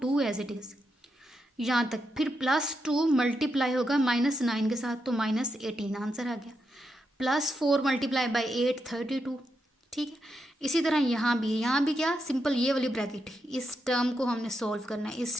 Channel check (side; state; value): both; normal; correlation 0.84